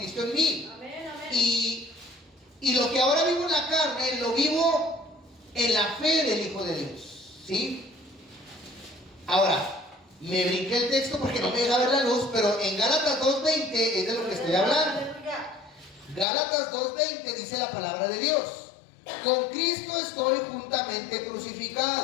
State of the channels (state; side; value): drops out; right; at 16.2 s